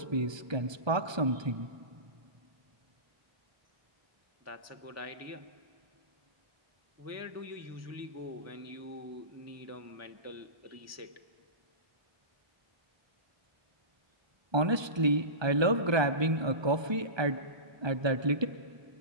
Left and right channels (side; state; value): left; late; 1.2 ms